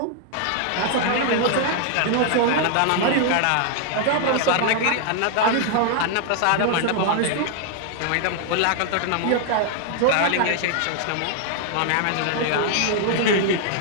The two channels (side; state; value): both; different; correlation 0.00